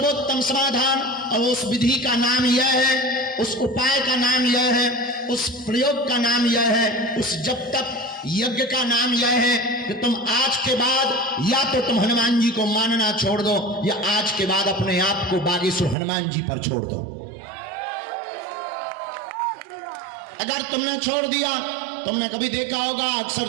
समाधान, और उस विधि का नाम यह है, उस उपाय का नाम यह है, उस प्रयोग का नाम यह है, उस जब तक यज्ञ का नाम यह है कि तुम आज के बाद या तो तुम हनुमान जी को मानना छोड़ दो, या आज के बाद अपने आप को बागेश्वर हनुमान जी पर छोड़ दो। अगर तुमने छोड़ दिया, तुमने कभी देखा होगा अक्सर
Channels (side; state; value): left; drops out; at 16.0 s